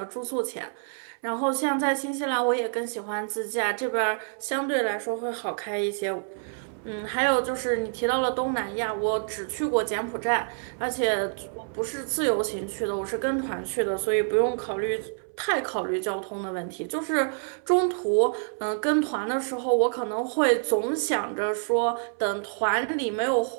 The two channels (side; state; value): left; silent; 60 dB below the other